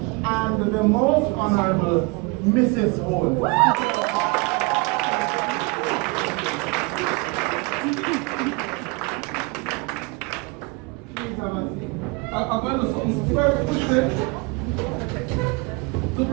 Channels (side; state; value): left; quieter; 26.8 dB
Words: I'm the most honorable Mrs. Holness. I'm going to very quickly to